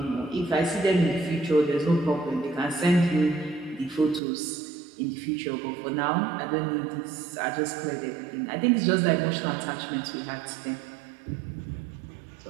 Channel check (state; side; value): drops out; left; at 4.2 s